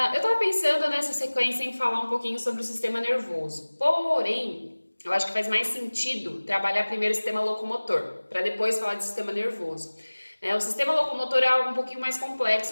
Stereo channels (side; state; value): both; inverted; correlation -1.00